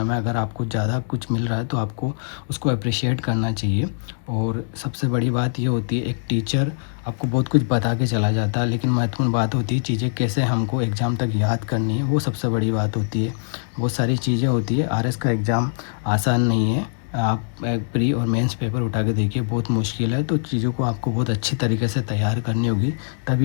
में अगर आपको ज़्यादा कुछ मिल रहा है तो आपको उसको अप्रिशिएट करना चाहिए। और सबसे बड़ी बात ये होती है, एक टीचर आपको बहुत कुछ बता के चला जाता है, लेकिन महत्वपूर्ण बात होती है चीज़ें कैसे हमको एग्ज़ाम तक याद करनी है, वो सबसे बड़ी बात होती है। बहुत सारी चीज़ें होती है। आरएस का एग्ज़ाम आसान नहीं है। आप एक प्री और मेंस पेपर उठा के देखिए, बहुत मुश्किल है। तो चीज़ों को आपको बहुत अच्छी तरीके से तैयार करनी होगी,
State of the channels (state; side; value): silent; right; digital silence